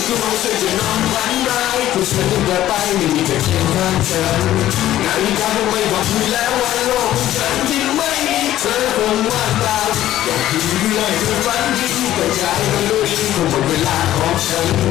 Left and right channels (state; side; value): quieter; right; 13.4 dB